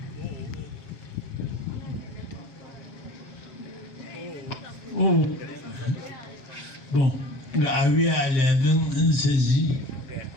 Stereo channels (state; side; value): late; right; 7.0 ms